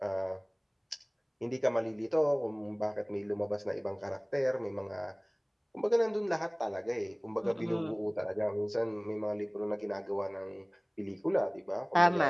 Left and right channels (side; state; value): both; identical; correlation 1.00